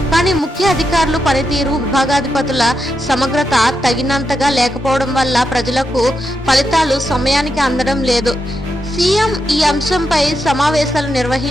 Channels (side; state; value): both; normal; correlation 0.85